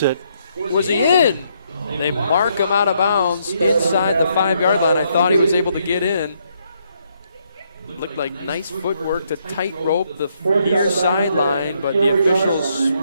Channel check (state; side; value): inverted; both; correlation -0.74